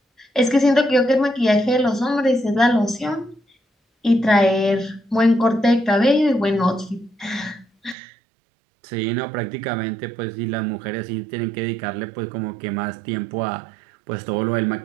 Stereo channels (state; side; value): drops out; left; at 8.0 s